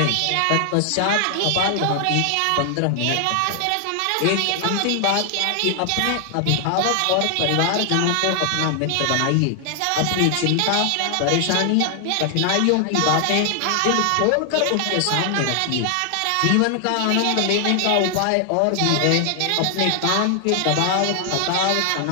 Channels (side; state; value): both; different; correlation 0.00